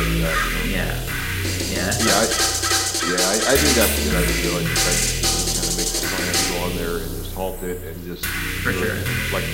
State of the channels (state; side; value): identical; both; correlation 1.00